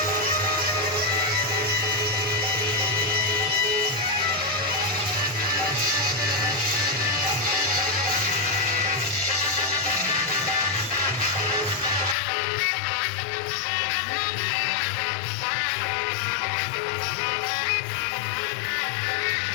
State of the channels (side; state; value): right; drops out; at 12.2 s